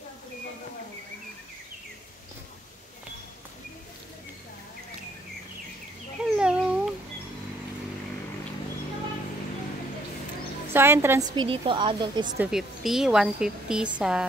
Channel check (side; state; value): both; normal; correlation 0.66